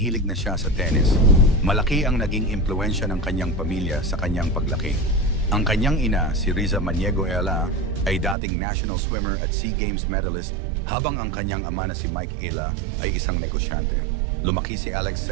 na siya sa tennis. Malaki ang naging impluwensya ng kanyang pamilya sa kanyang paglaki. Ang kanyang ina, si Riza Maniego Ayala, ay dating national swimmer at SEA Games medalist, habang ang kanyang ama na si Mike Ayala ay isang negosyante. Lumaki si Alex sa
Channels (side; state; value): left; drops out; at 8.3 s